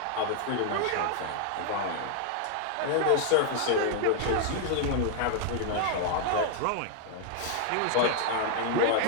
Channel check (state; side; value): different; both; correlation 0.00